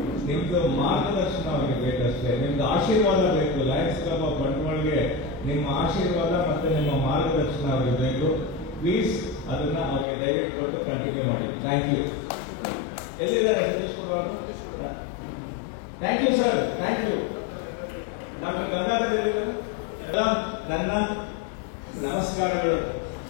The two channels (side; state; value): right; drops out; at 10.1 s